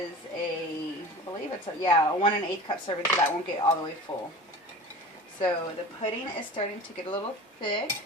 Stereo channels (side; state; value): both; normal; correlation 0.37